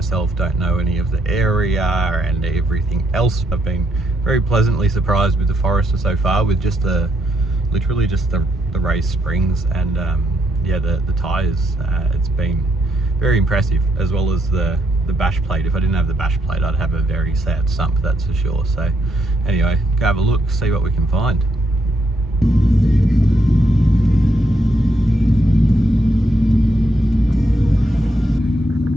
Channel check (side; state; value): both; normal; correlation 0.76